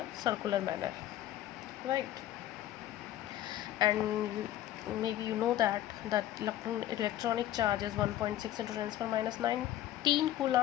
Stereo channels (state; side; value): quieter; right; 13.1 dB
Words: circular manner, right? And maybe you know that electronic charge is 1.6 into 10 power minus 19